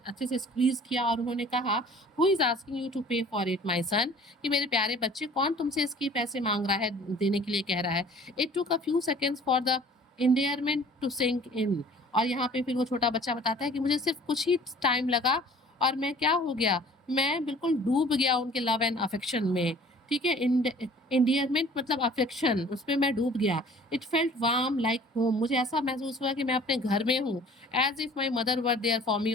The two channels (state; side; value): normal; both; correlation 0.50